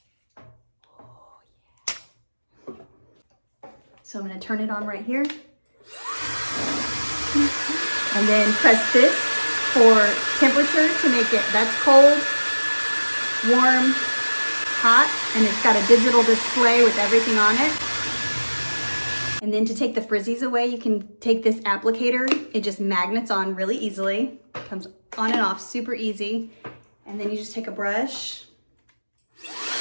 So I'm gonna turn it on right here. And then press this for temperature to make it, that's cold, warm, hot, and it's got a digital display with everything on it. And then to take the frizzies away, you can take this applicator. It just magnets on really easily. Comes on and off super easy. And then you just take a brush.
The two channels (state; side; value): inverted; both; correlation -1.00